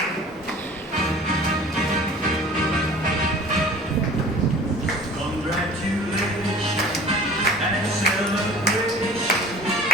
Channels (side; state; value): both; normal; correlation 0.44